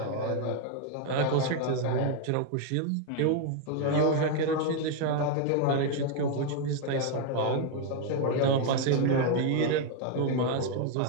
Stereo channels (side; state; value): both; different; correlation 0.01